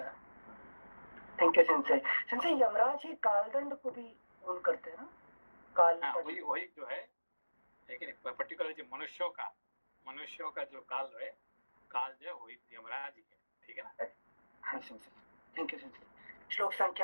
थैंक यू सिंसे। यमराज ही कालदंड को भी उन करते हैं ना काल हाँ, तट। वही वही जो है, लेकिन पर्टिकुलर जो मनुष्यों का जो काल है, काल जो है वही यमराज ही है, ठीक है ना। हाँ संसद, थैंक यू संसद। श्लोक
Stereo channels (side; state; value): both; inverted; correlation -1.00